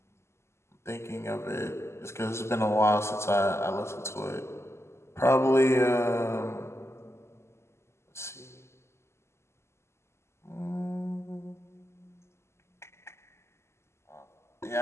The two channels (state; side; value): late; right; 0.13 ms